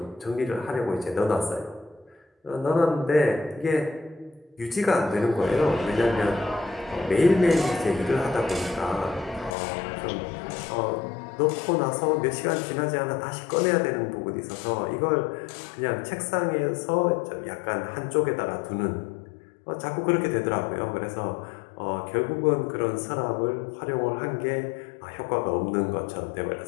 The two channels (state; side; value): drops out; right; at 9.6 s